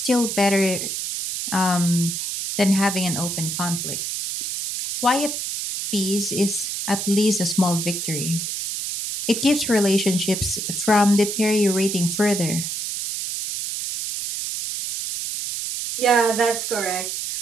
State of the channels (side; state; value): right; noise; hiss, 4 dB below the sound